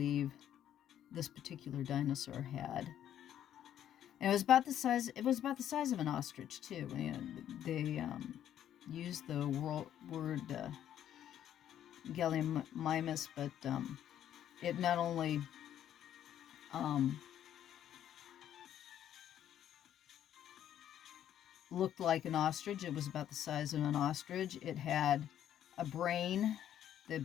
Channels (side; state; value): right; quieter; 10.7 dB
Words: this particular dinosaur had. And it was about the size of an ostrich too. And they used the word Llyn, but it not only looked like an ostrich, it was about the size of an ostrich. It had a brain. The